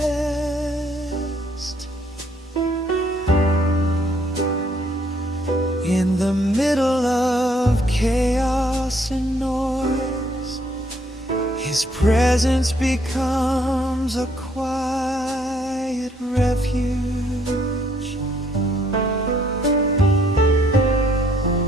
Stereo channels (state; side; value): normal; both; correlation 0.67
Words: In the middle of chaos and noise, His presence becomes a quiet refuge.